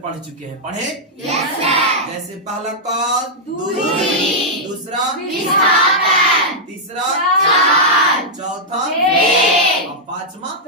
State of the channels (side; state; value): both; normal; correlation -0.06